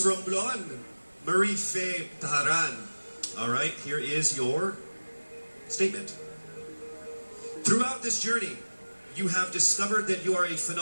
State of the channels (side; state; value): both; inverted; correlation -1.00